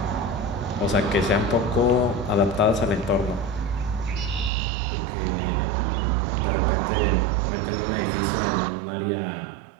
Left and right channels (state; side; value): drops out; left; at 4.5 s